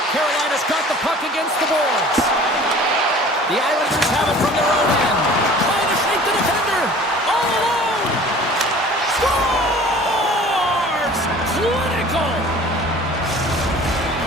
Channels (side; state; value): both; normal; correlation 0.46